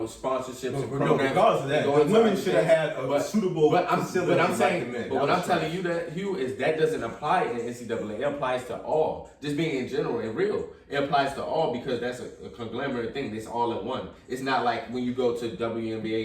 and programs, regardless of that, and the going to women other should have things, had a suitable facility but I'm like saying, the men. but That what was I'm telling you that, Hugh, is that doesn't apply in NCAA. It applies to all. Just being in general and real. It applies to all because that's a conglomerate thing. It's all in one. It's not like when you go to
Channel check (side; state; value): both; identical; correlation 1.00